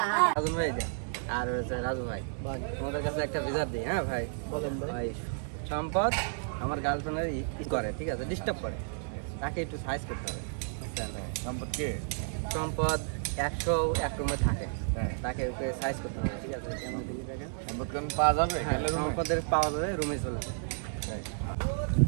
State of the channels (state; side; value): silent; left; digital silence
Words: রাজু ভাই আর রাজু ভাই তোমাদের কাছে একটা বিচার দিই। হ্যাঁ ভাই বলেন ভাই। সম্পদ আমার গার্লফ্রেন্ডের ই করে, ঠিক আছে, ডিস্টার্ব করে, তাকে একটু সাইজ করতে হবে। সম্পদ কে? সম্পদ 101 রুমে থাকে, তাকে ওকে সাইজ করতে হবে, ঠিক আছে। কেমন দিলি দেখেন, সম্পদ কেন পাওয়া যাবে? হ্যাঁ, সম্পদের পাওয়া যাবে, রুমে চলে যাবে।